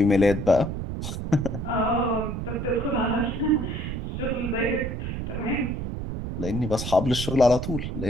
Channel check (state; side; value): noise; right; rumble, 5 dB below the sound